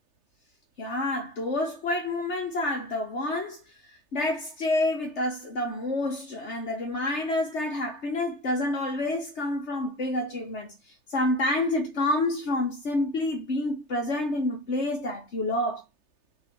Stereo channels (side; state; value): right; late; 3.3 ms